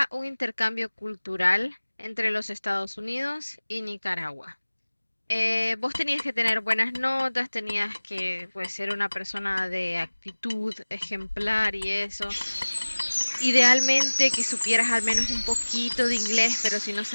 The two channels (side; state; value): both; inverted; correlation -1.00